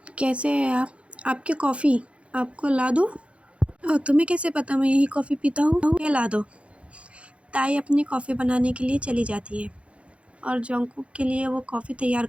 कैसे हैं आप? आपकी कॉफ़ी आपको ला दूँ? तुम्हें कैसे पता मैं यही कॉफ़ी पीता हूँ? ये ला दो। ताई अपनी कॉफ़ी बनाने के लिए चली जाती है और जंकुक के लिए वो कॉफ़ी तैयार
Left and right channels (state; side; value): late; left; 0.061 ms